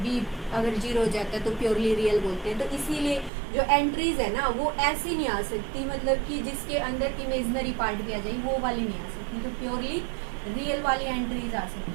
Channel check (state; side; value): drops out; left; at 3.3 s